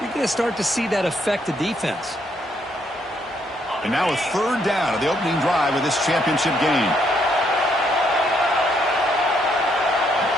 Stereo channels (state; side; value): normal; both; correlation 0.72